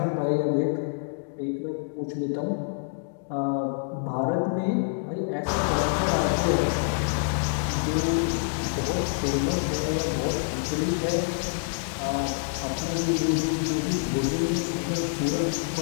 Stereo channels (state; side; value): silent; right; digital silence